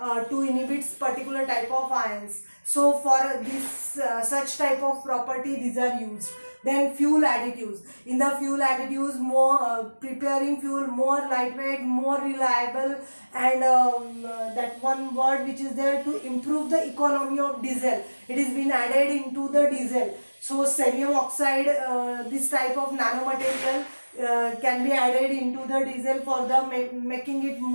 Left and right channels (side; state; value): both; inverted; correlation -1.00